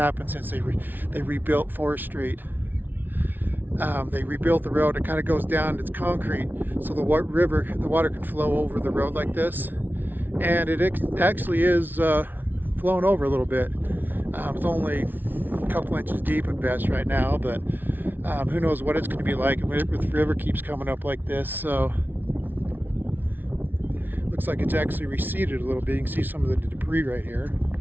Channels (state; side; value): late; left; 0.090 ms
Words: since they rebuilt Forest Street. They rebuilt the road. It kind of goes down. It's concrete, so the water can flow over the road like this, and it actually is flowing over a little bit. It's only a couple inches deep at best right now, but who knows what it's going to be like if the river keeps coming up like this. So looks like it's actually receded a little bit. You can see some of the debris right here,